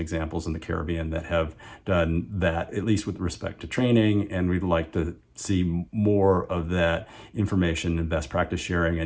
in the Caribbean that have done that, at least with respect to training. And we'd like to see more of that information and best practice sharing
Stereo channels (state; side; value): identical; both; correlation 1.00